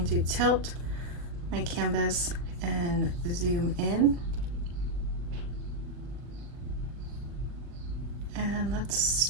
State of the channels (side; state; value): left; late; 40 ms